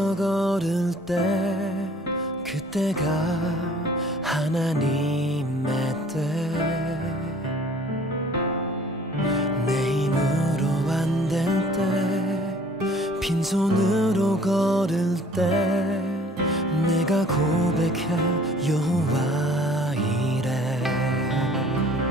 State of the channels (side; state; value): both; normal; correlation 0.53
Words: 걸을 때 그때가 하나님의 때 내 힘으로 안 될 때 빈손으로 걸을 때 내가 고백해 여호와 이래